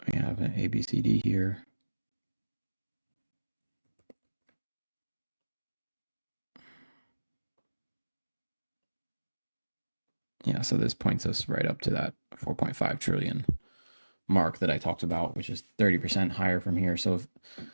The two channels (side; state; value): both; inverted; correlation -1.00